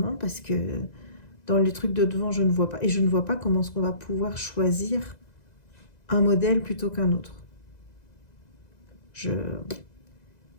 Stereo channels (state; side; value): late; right; 2.0 ms